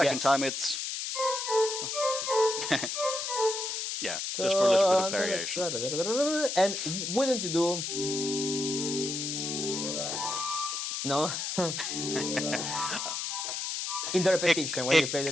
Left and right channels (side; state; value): left; noise; hiss, 3 dB below the sound